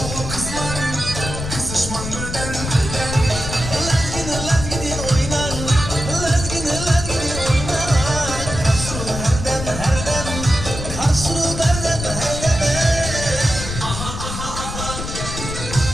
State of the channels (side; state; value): left; noise; rumble, 6 dB below the sound